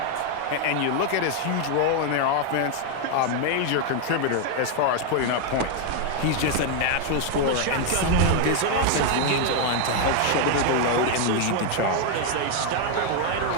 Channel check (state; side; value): different; both; correlation 0.00